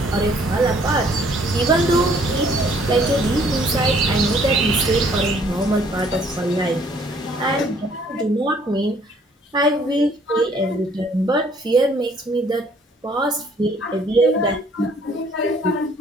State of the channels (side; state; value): both; normal; correlation 0.61